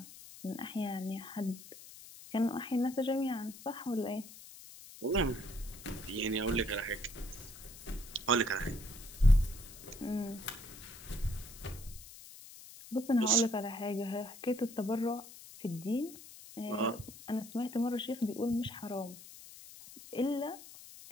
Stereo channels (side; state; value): left; noise; hiss, 16 dB below the sound